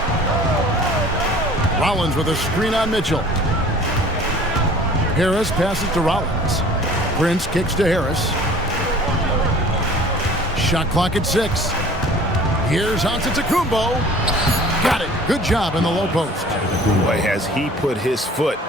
Rollins with a screen on Mitchell. Harris passes to Rollins. Prince kicks to Harris. Shot clock at 6. Here's Antetokounmpo. Got it. Good job in the low post. Boy, has he put his foot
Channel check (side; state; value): both; normal; correlation 0.48